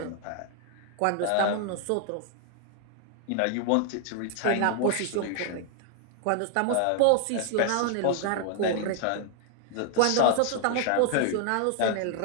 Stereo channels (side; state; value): both; different; correlation 0.00